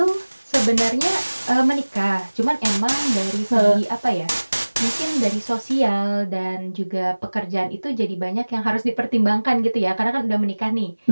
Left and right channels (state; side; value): inverted; both; correlation -1.00